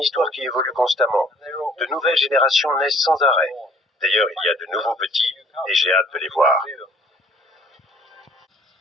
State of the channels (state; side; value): normal; both; correlation 0.56